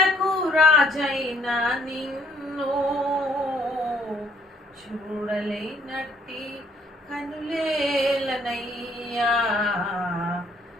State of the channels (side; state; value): both; normal; correlation 0.63